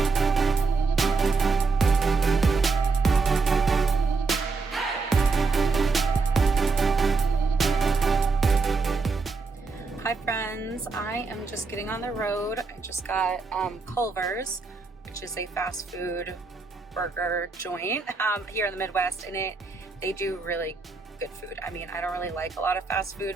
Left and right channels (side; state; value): left; quieter; 4.2 dB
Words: Hi friends, I am just getting on the road. I just got Culver's, which is a fast food burger joint here in the Midwest, and they do really good food. I mean, I don't really like a lot of fast food,